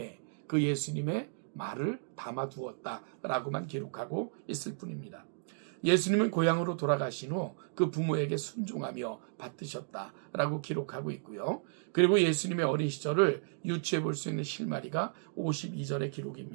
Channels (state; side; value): silent; left; digital silence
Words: 그 예수님의 말을 담아두었다라고만 기록하고 있을 뿐입니다. 예수님은 고향으로 돌아가신 후 그 부모에게 순종하며 받드셨다라고 기록하고 있고요. 그리고 예수님의 어린 시절을 유추해 볼 수 있는 실마리가 52절의